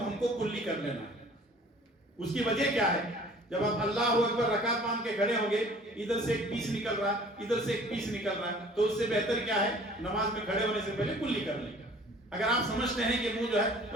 ہم کو کلی کر لینا ہے۔ اس کی وجہ کیا ہے؟ جب آپ اللہ اکبر رکعت باندھ کے کھڑے ہوں گے، ادھر سے ایک پیس نکل رہا ہے، ادھر سے ایک پیس نکل رہا ہے، تو اس سے بہتر کیا ہے؟ نماز میں کھڑے ہونے سے پہلے کلی کر لیں۔ اگر آپ سمجھتے ہیں کہ منہ جو ہے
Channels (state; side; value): normal; both; correlation 0.50